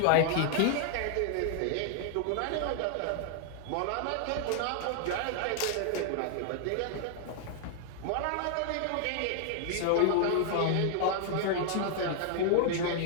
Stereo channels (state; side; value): different; both; correlation 0.00